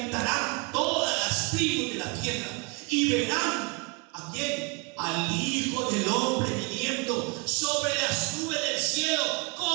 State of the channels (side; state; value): left; quieter; 29.8 dB